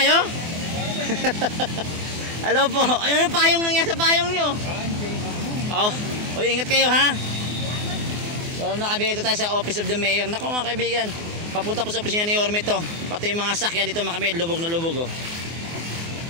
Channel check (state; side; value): late; left; 24 ms